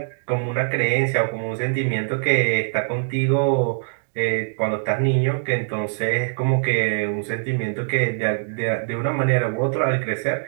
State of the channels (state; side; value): silent; left; digital silence